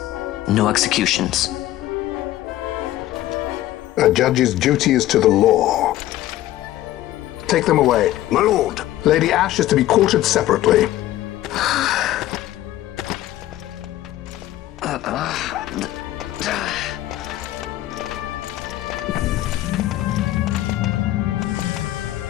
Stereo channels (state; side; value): quieter; right; 14.6 dB